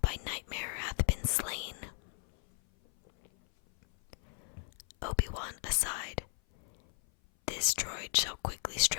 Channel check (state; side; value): silent; right; 54 dB below the other